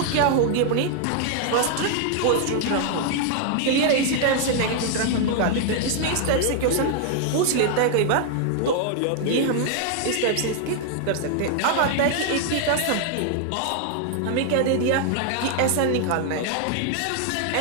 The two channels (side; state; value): both; different; correlation 0.00